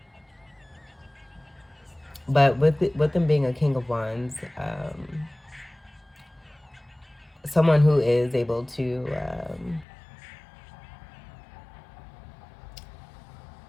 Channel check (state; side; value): drops out; right; at 9.9 s